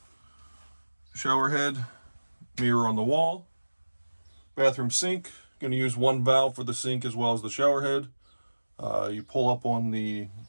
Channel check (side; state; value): both; inverted; correlation -1.00